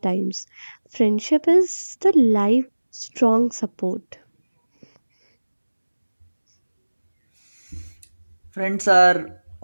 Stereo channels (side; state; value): both; inverted; correlation -1.00